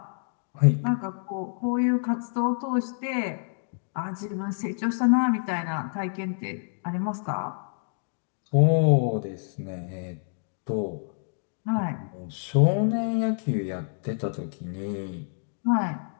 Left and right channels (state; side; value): silent; right; digital silence